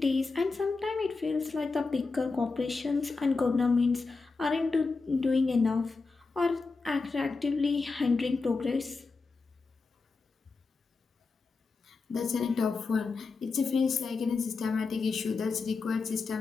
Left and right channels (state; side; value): quieter; right; 4.2 dB